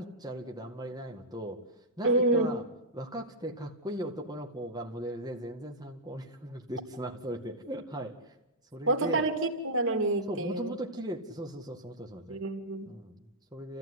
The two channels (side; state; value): both; normal; correlation -0.09